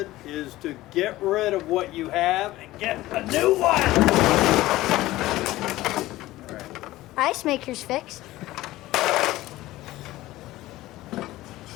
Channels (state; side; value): quieter; right; 16.9 dB